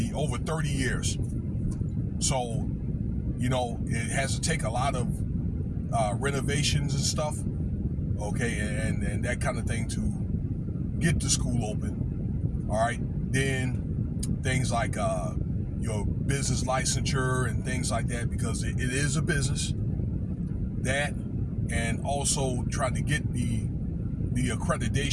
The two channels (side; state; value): both; identical; correlation 1.00